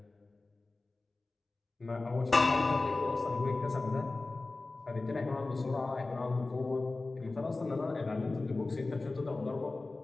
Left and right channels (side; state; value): right; quieter; 3.3 dB